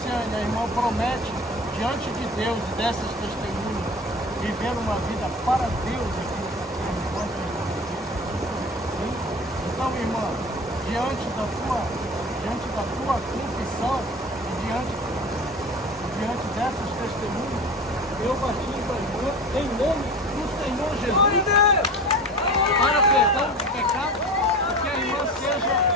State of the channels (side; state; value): both; normal; correlation 0.36